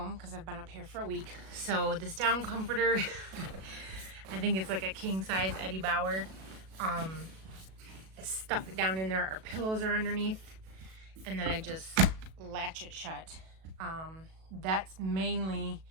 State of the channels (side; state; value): left; late; 37 ms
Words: because I've been up here for a week. So, this down comforter, I think it's like a king size Eddie Bauer. I stuff it down in there. Our pillows are underneath, and then I just latch it shut. That's mainly